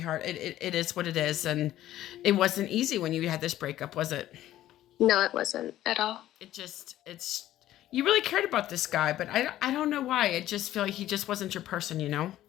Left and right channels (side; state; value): right; quieter; 13.6 dB